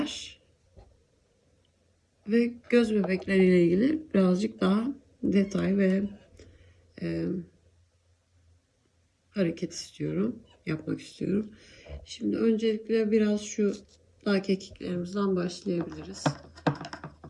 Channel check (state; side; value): identical; both; correlation 1.00